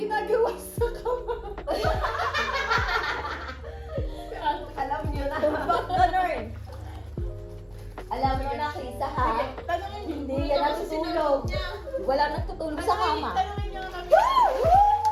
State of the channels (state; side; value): identical; both; correlation 1.00